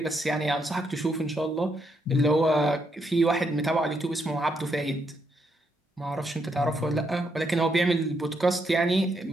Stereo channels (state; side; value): normal; both; correlation 0.78